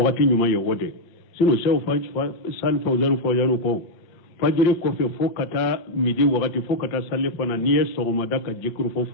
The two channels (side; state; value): right; late; 5.7 ms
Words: nyuma yode sino sew sal fawzanu ko fajiri kofe fo kata midi wakati fo kata salli fana niye sogoma daka jikiru fo